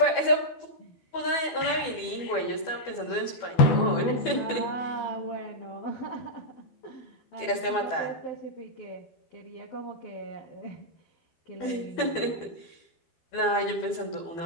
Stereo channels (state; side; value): late; right; 12 ms